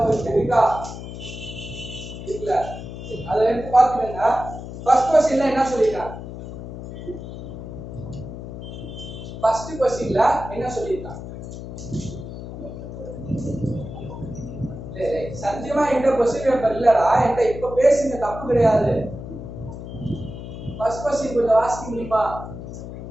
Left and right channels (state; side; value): noise; left; hum, 10 dB below the sound